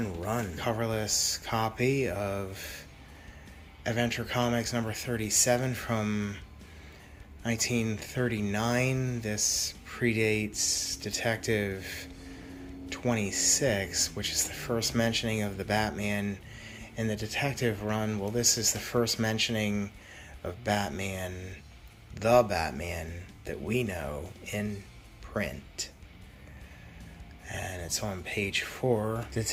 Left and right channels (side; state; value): both; identical; correlation 1.00